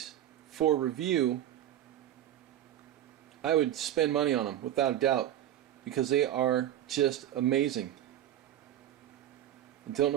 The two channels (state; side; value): quieter; left; 11.7 dB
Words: for review, I would spend money on them without a doubt because they are just amazing. I don't